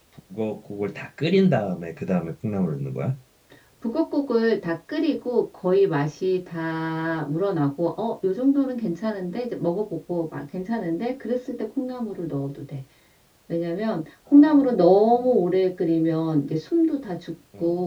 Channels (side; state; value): both; identical; correlation 1.00